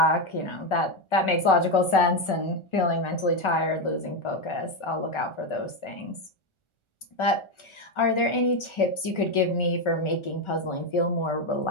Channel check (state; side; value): late; right; 1.4 ms